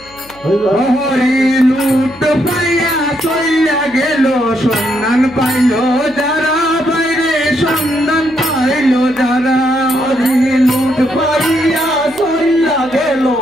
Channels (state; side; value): noise; left; hum, 25 dB below the sound